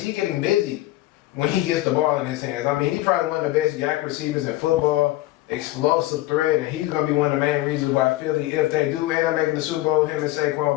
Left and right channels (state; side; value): quieter; right; 16.9 dB